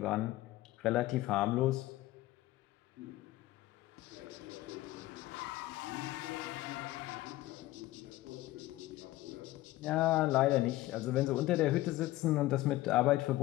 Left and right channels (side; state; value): right; quieter; 16.9 dB